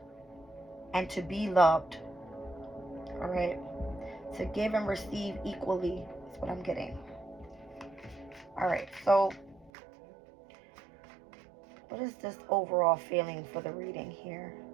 and to be loved. All right. To give and receive equally is what I'm getting. All right. So what is this overall feeling for the reading here?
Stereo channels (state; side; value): drops out; left; at 9.7 s